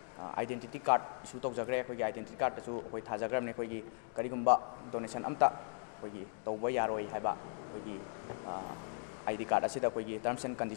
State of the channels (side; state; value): right; silent; 53 dB below the other